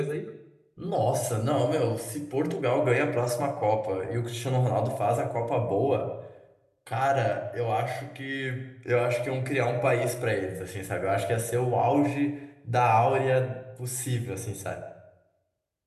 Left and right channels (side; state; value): both; identical; correlation 1.00